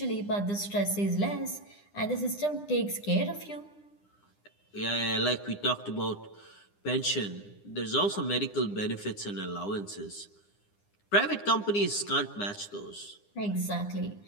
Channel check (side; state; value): right; late; 9.9 ms